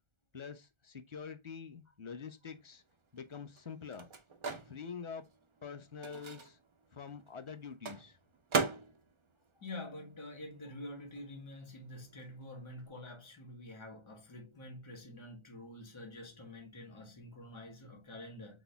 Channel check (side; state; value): left; late; 1.4 ms